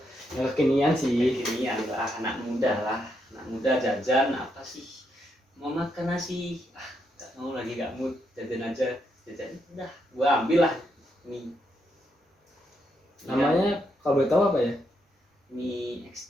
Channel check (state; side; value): normal; both; correlation 0.79